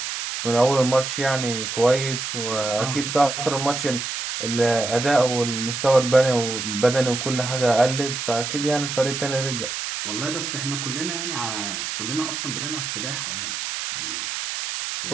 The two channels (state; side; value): noise; right; hiss, 4 dB below the sound